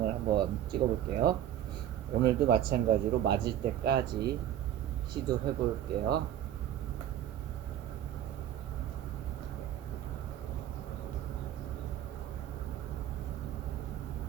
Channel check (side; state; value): left; quieter; 11.2 dB